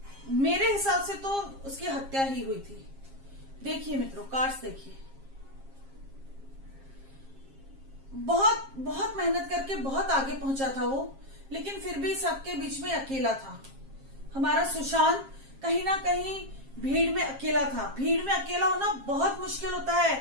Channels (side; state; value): left; late; 7.5 ms